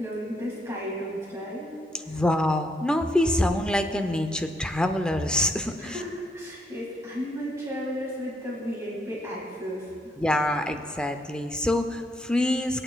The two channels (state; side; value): normal; both; correlation 0.74